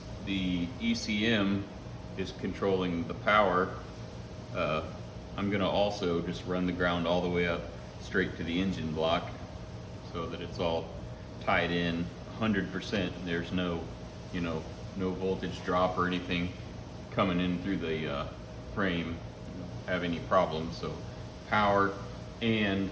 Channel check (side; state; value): both; identical; correlation 1.00